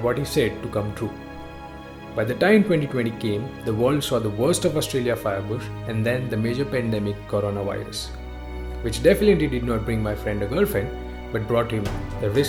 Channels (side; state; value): both; identical; correlation 1.00